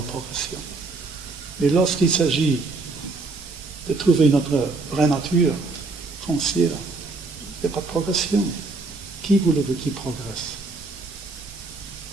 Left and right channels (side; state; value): left; quieter; 3.7 dB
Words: Mais lorsqu'il s'agit de trouver notre vraie nature foncière, il n'y a pas de progression. Qui voulez-vous qui progresse?